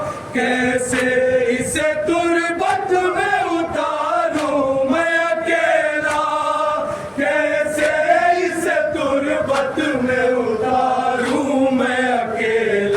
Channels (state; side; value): identical; both; correlation 1.00